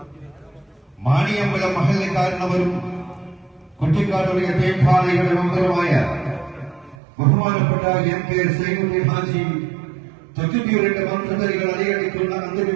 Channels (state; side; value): drops out; left; at 7.0 s